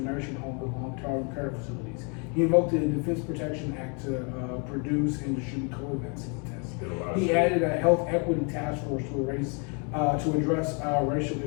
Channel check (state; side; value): quieter; right; 35.8 dB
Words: nursing homes and long-term care facilities. He invoked the Defense Protection Act to produce and distribute COVID vaccine tests. Did a lot of He shit. added a health equity task force to address racial